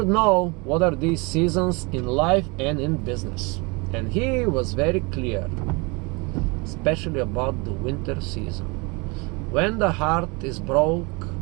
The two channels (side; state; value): left; quieter; 28.4 dB